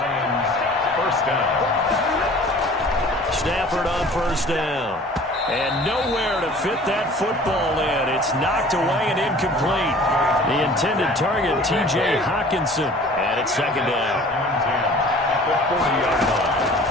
First down. Stafford on first down. And nowhere to fit that football in. It's knocked away and incomplete. The intended target, T.J. Hawkinson. And it's second down.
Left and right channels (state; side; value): normal; both; correlation 0.47